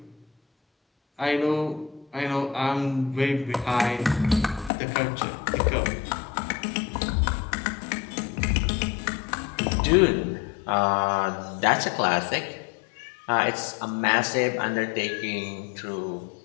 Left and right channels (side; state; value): right; drops out; at 4.7 s